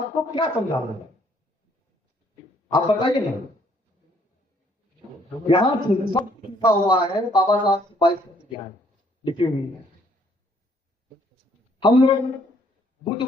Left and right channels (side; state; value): both; normal; correlation 0.65